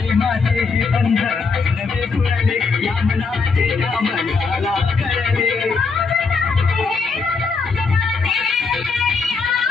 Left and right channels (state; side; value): quieter; right; 4.7 dB